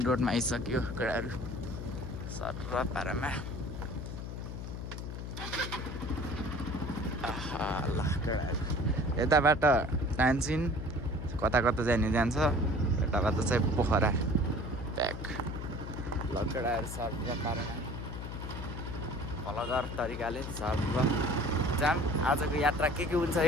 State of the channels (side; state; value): left; noise; hum, 7 dB below the sound